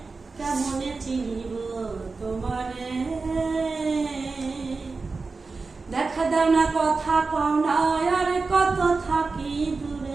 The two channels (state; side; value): quieter; left; 4.1 dB